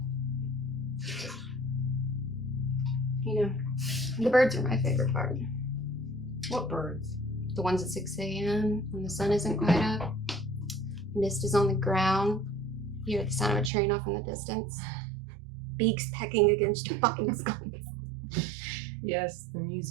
You know, the birds are my favorite part. What birds? The ones at 6 a.m. when the sun isn't quite up. Mist is on the ground. You hear the sound of a train off in the distance. Beaks pecking against your fucking skulls. Yes, the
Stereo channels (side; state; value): left; drops out; at 13.7 s